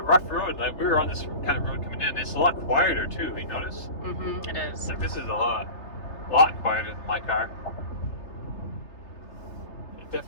rough road. Like, we were on this kind of road coming in. It's a lot quieter too. You notice? It is. Like, this is a lot quieter than my car. It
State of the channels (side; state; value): right; late; 3.3 ms